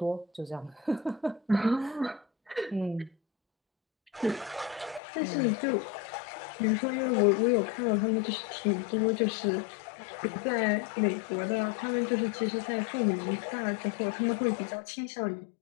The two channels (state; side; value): drops out; right; at 5.0 s